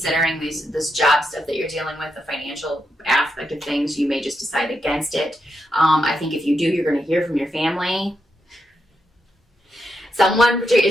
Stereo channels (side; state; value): both; normal; correlation 0.83